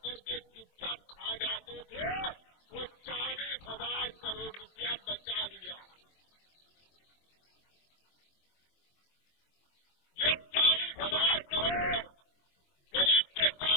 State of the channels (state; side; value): late; right; 24 ms